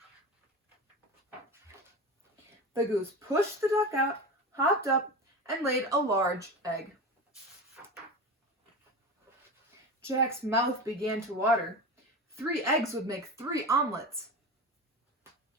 The goose pushed the duck out, hopped up, and laid a large egg. Jack's mouth began to water. 3 eggs would make 3 omelets.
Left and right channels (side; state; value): both; normal; correlation 0.26